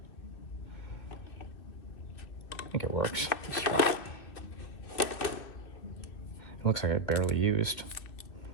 I think it works. It looks like it barely used.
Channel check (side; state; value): right; late; 2.3 ms